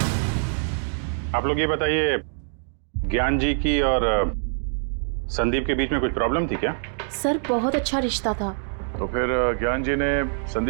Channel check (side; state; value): left; silent; digital silence